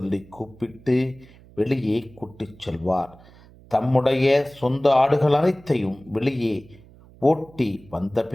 கூப்பிட்டு வெளியே கூட்டிச் செல்வார். தம்முடைய சொந்த ஆடுகள் அனைத்தையும் வெளியே ஓட்டி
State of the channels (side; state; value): right; noise; hum, 24 dB below the sound